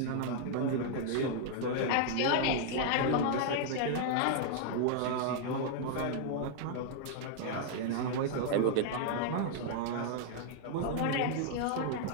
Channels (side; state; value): both; different; correlation -0.01